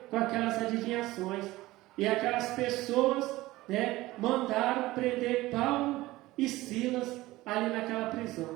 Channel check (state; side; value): quieter; left; 18.3 dB